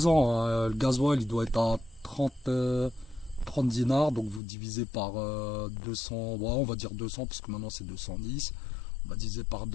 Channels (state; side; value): drops out; right; at 4.4 s